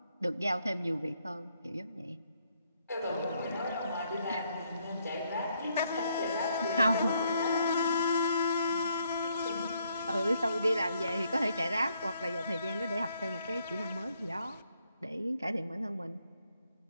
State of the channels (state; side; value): inverted; both; correlation -0.73